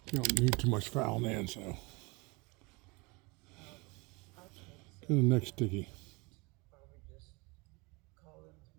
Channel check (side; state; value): left; quieter; 27.0 dB